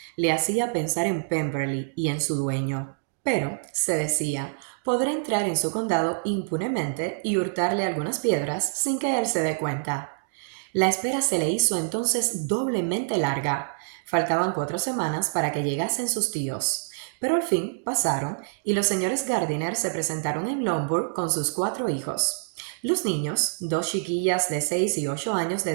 Le hacía pensar en Pemberley y en su dueño. Pero, se decía, podrá entrar en su condado impunemente y hurtarle algunas piedras sin que él se dé cuenta. La espera se le hizo entonces doblemente larga. Faltaban 4 semanas para que llegasen sus tíos, pero al fin pasaron y los señores Gardiner se presentaron en Longbourn con sus 4 hijos. Los niños, 2 chiquillas de 6 y 8 años de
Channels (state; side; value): silent; left; digital silence